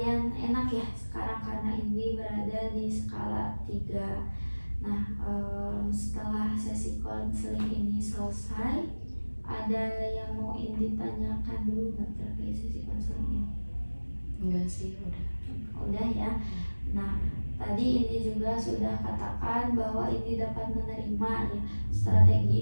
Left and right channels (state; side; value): inverted; both; correlation -1.00